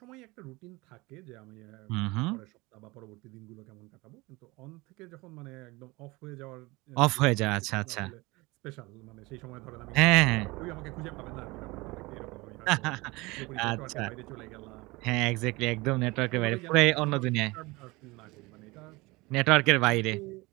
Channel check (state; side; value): quieter; left; 23.1 dB